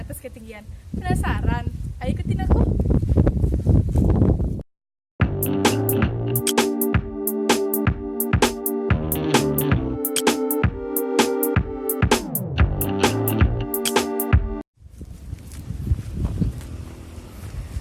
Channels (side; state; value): both; identical; correlation 1.00